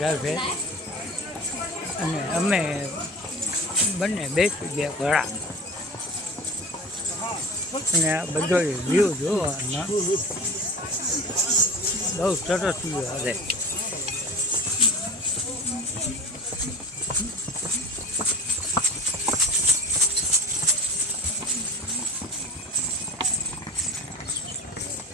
છે અને અમે બંને બેસી ગયા ઘોડા. અને આ બધો વ્યૂ જોવામાં બહુ સરસ વ્યૂ આવે.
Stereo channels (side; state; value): both; normal; correlation 0.36